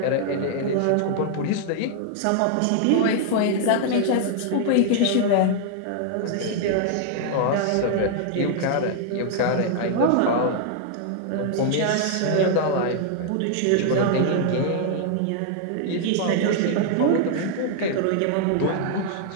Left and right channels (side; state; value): both; different; correlation 0.00